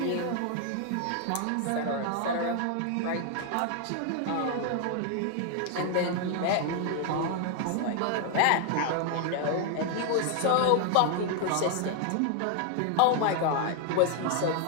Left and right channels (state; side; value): different; both; correlation 0.00